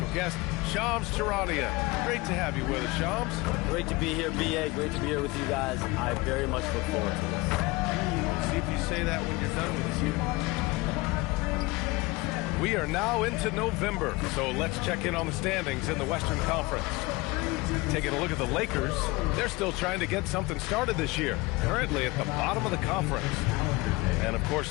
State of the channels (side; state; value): right; quieter; 22.7 dB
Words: guest, Shams Charania. Great to have you with us, Shams. Great to be here, B.A. Great to be here with you guys. I very much look forward to this. See if you say that when you're done with us here. We are now into November, so let's check in on the standings in the Western Conference. Taking a look at the Lakers, they're still trying to get something started this year, currently at the bottom of the conference. And of course